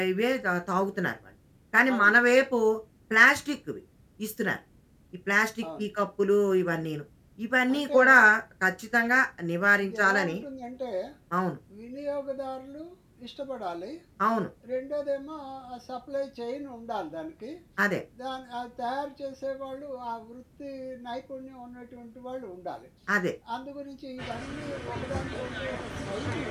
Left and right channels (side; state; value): both; identical; correlation 1.00